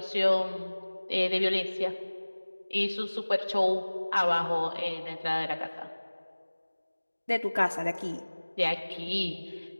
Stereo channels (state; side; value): inverted; both; correlation -1.00